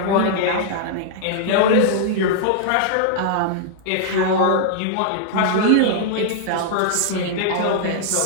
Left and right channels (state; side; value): different; both; correlation -0.01